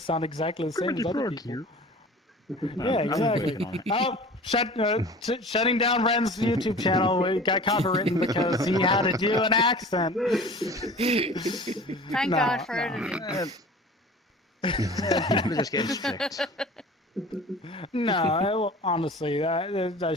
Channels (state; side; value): normal; both; correlation 0.41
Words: sound exactly the same as other people. Yeah, exactly. Oh, shutting down Ren's YouTube channel. We got copywritten because he had to do an accent. Thank God for editing. People are just getting strict. No, honestly, that